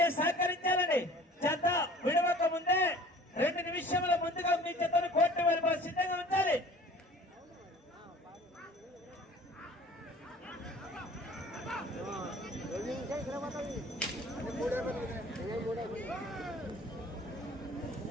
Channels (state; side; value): normal; both; correlation 0.48